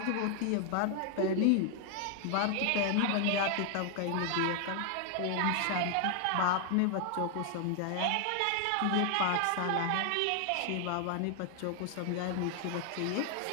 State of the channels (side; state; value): both; different; correlation 0.00